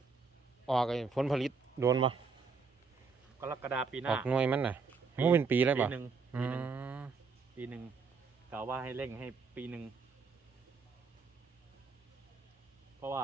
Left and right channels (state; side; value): quieter; left; 4.9 dB